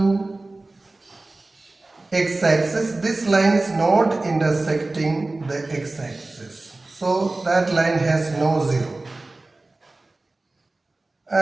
x-axis. This line is not intersecting the x-axis. So that line has no 0.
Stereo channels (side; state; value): left; quieter; 3.1 dB